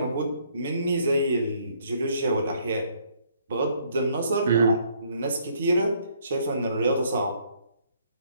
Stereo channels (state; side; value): inverted; both; correlation -0.66